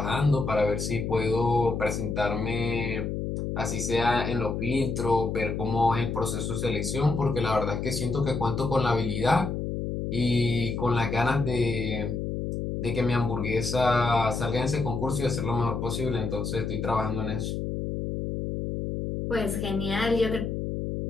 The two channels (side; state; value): left; noise; hum, 3 dB below the sound